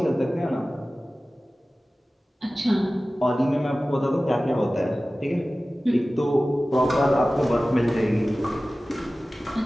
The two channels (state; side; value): normal; both; correlation 0.97